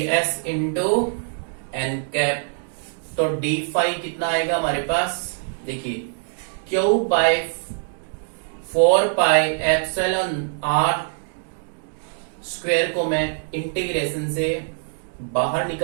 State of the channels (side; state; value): left; silent; 63 dB below the other